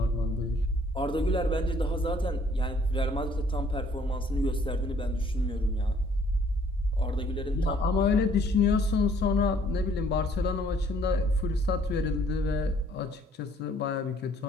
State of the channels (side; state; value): both; normal; correlation 0.61